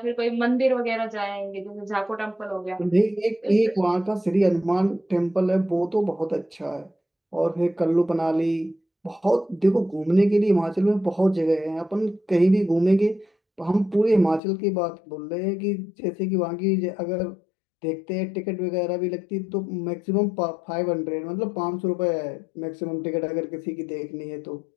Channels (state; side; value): drops out; right; at 14.4 s